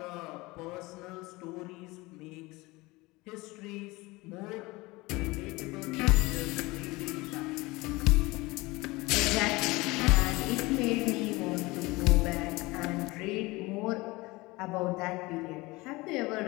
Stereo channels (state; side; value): quieter; right; 22.2 dB